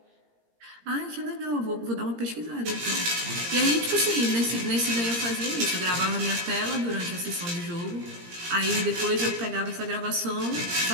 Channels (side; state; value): left; late; 17 ms